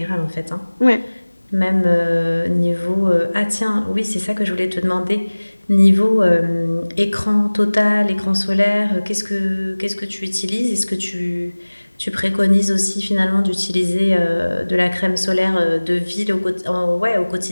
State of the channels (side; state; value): both; inverted; correlation -1.00